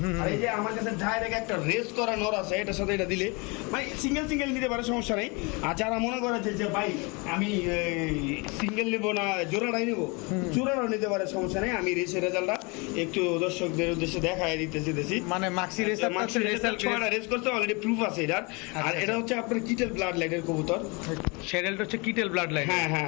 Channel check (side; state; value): right; quieter; 29.1 dB